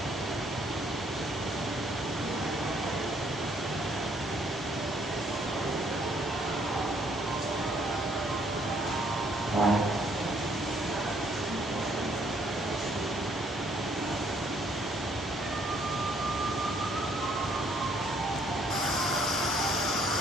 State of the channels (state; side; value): normal; both; correlation 0.66